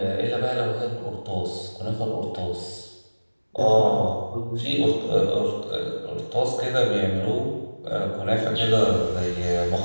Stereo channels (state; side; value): inverted; both; correlation -1.00